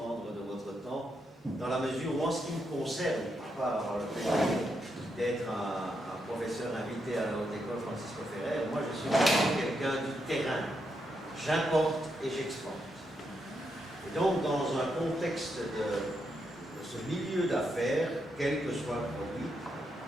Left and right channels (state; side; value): normal; both; correlation 0.81